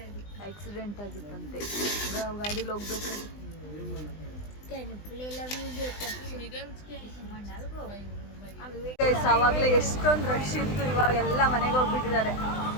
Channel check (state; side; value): late; right; 20 ms